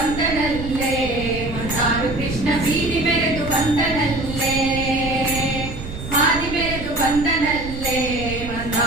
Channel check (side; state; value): right; noise; rumble, 9 dB below the sound